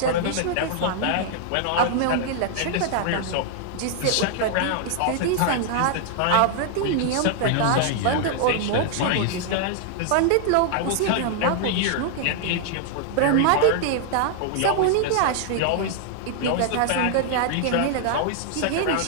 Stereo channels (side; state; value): both; different; correlation -0.01